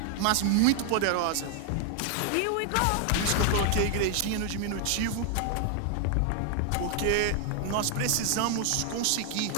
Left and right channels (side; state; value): both; different; correlation 0.00